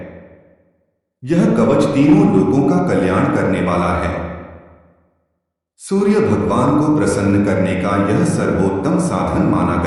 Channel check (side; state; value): both; identical; correlation 1.00